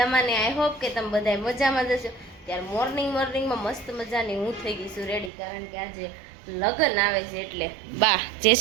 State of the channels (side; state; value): left; drops out; at 5.3 s